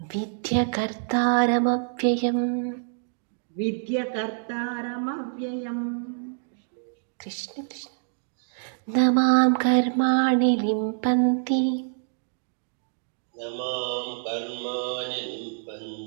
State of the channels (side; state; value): left; silent; digital silence